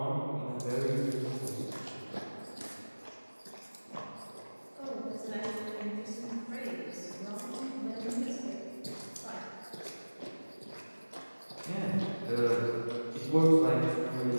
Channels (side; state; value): both; inverted; correlation -1.00